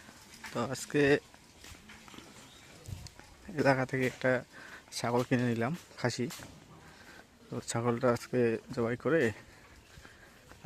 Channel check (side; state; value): both; identical; correlation 1.00